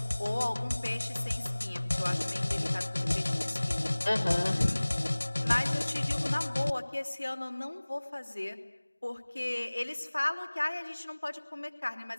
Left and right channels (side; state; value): both; inverted; correlation -1.00